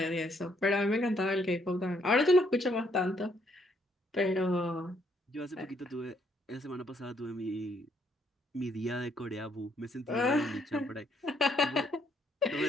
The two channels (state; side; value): normal; both; correlation 0.70